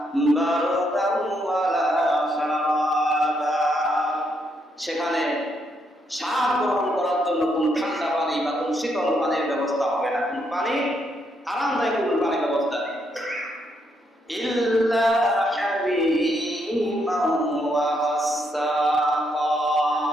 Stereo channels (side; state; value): both; normal; correlation 0.76